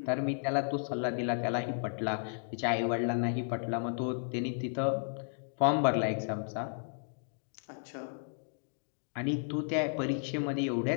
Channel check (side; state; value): right; silent; digital silence